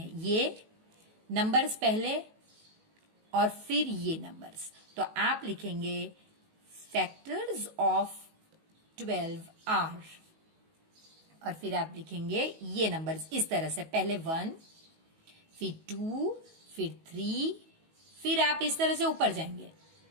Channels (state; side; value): late; left; 19 ms